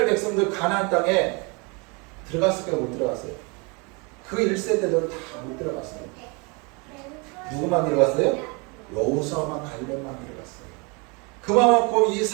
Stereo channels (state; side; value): quieter; left; 30.4 dB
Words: 백성들 가나안 땅에 들어갔을까요? 못 들어갔어요? 그 1세대들은 다 못 들어갔어요. 누구만 들어갔어요? 여호수아만 갈렙만 들어갔어요. 그만큼 이